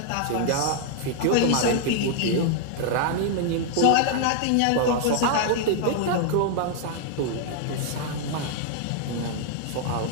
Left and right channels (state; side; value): different; both; correlation 0.00